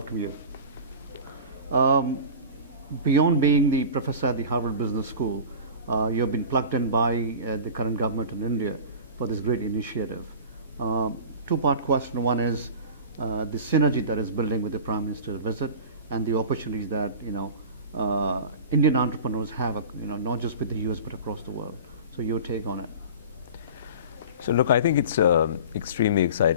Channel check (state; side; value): inverted; both; correlation -0.36